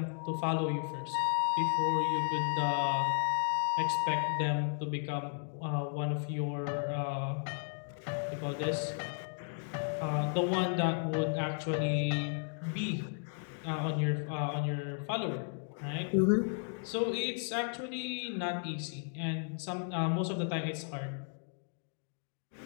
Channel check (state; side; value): silent; right; 55 dB below the other